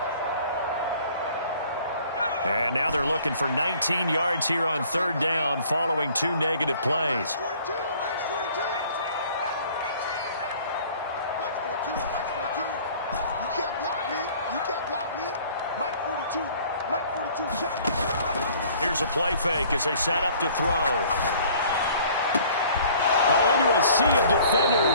And now they're looking for 19 yards here on third down following 2 negative plays. Here's a play fake as they set up to throw. Into a sea of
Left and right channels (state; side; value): inverted; both; correlation -0.53